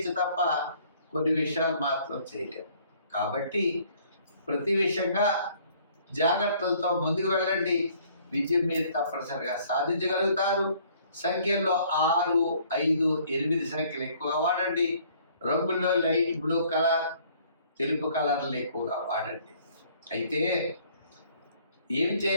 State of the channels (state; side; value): inverted; both; correlation -0.60